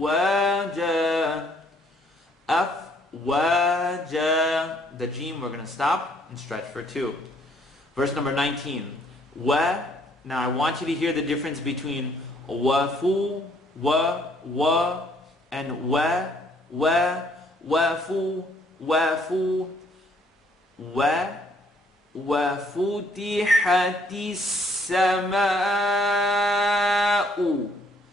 أفواجا. The jim we're going to stop and stretch for 2. Verse number 19. Wa. Now I want you to hear the difference between wafu, wa, and wafu, وَفُتِحَتِ السَّمَاءُ.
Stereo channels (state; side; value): normal; both; correlation 0.65